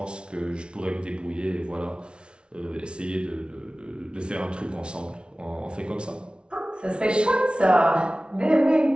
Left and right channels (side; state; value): left; late; 0.057 ms